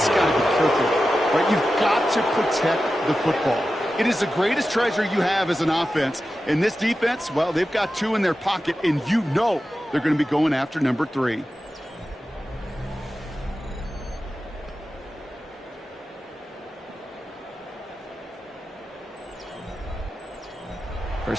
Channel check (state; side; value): normal; both; correlation 0.93